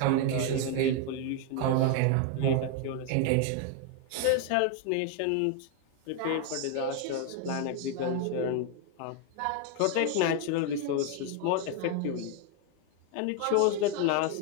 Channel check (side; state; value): both; different; correlation 0.01